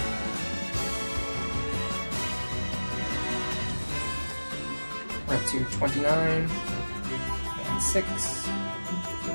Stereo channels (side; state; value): both; inverted; correlation -1.00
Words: We're up to 29 and 6.